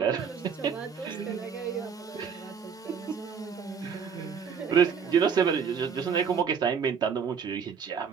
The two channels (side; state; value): left; quieter; 6.6 dB